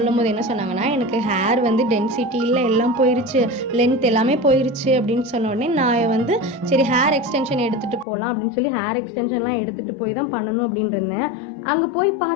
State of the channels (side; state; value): right; drops out; at 8.1 s